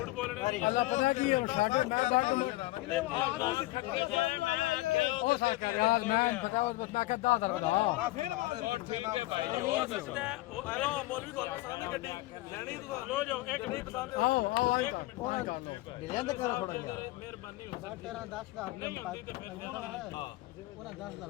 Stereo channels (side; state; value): right; quieter; 19.0 dB